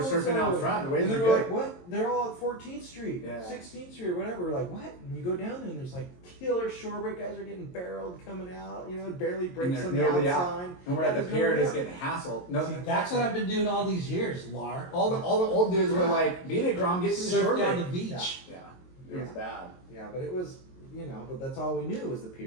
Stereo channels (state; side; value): late; right; 22 ms